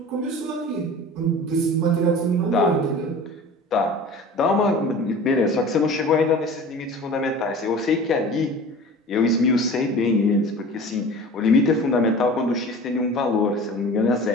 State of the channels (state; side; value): normal; both; correlation 0.39